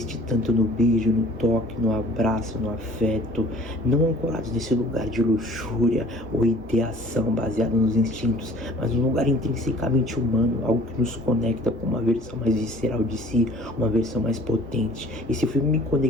tanto no beijo, no toque, no abraço, no afeto, não ancorados nesse lugar de luxúria ou ideação baseada nos instintos, mas um lugar intrinsecamente humano, algo que nos conecta com uma versão mais visceral de si, uma versão mais potente. Esse filme me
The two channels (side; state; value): both; normal; correlation 0.51